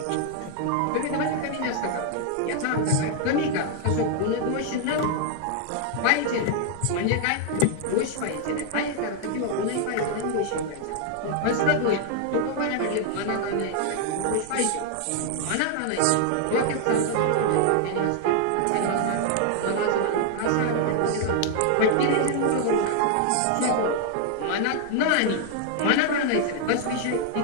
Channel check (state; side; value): different; both; correlation 0.00